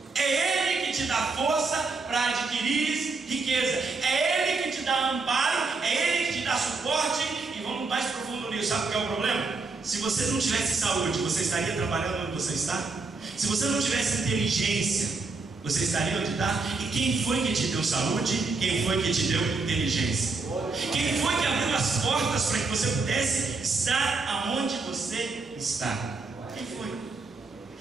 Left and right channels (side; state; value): left; quieter; 3.9 dB